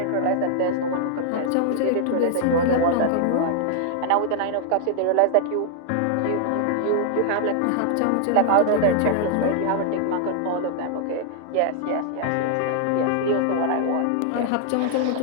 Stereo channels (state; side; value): different; both; correlation -0.01